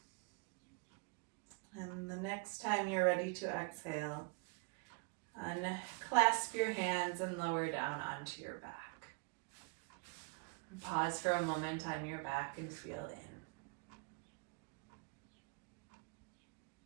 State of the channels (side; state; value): left; quieter; 31.9 dB